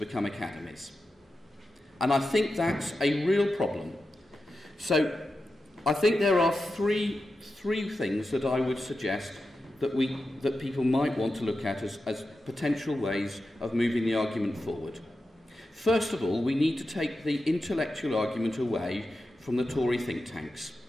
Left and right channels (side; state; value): both; normal; correlation 0.91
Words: academies. And I think that's a real problem. So I think there are three things that I would suggest that people might want to look at as potential ways of moving the argument forward. First of all, we need to take the intellectual argument away from the Tory think tanks.